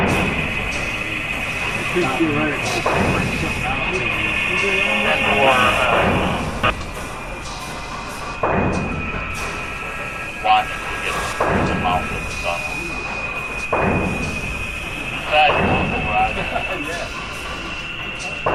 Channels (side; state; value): both; identical; correlation 1.00